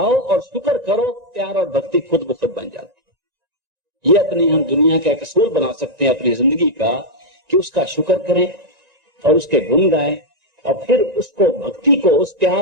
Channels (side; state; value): left; late; 1.9 ms